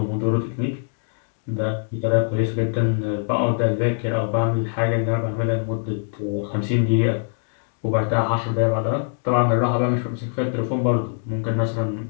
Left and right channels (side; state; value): right; silent; digital silence